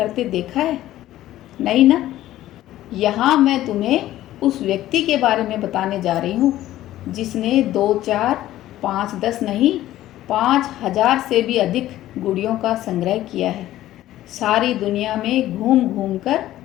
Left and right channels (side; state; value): right; quieter; 14.2 dB